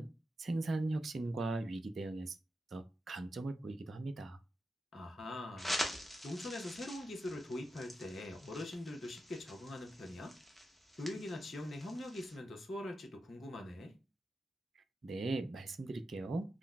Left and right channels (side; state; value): both; normal; correlation 0.89